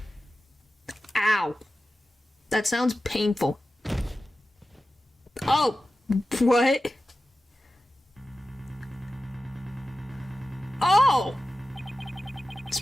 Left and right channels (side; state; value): both; normal; correlation 0.94